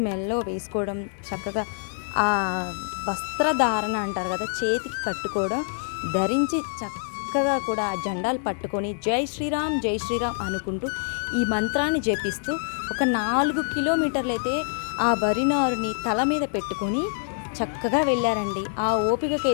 మెల్లో వేసుకోవడం, చక్కగా ఆ వస్త్రధారణ అంటారు కదా, చేతికి కట్టుకోవడం ధరించి చక్కగా కూడా ఆ జెండాలు పట్టుకొని జై శ్రీరామ్ జై శ్రీరామ్ అనుకుంటూ ఈ మంత్రాన్ని జపిస్తూ ఒక 4 కిలోమీటర్లు అయితే ఆ వరినారుని తల మీద పెట్టుకొని చక్కగా వెళ్ళారండి. ఆ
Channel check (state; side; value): silent; right; digital silence